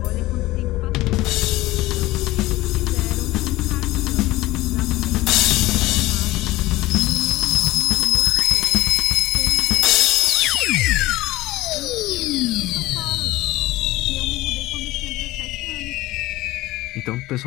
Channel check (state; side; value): quieter; right; 18.1 dB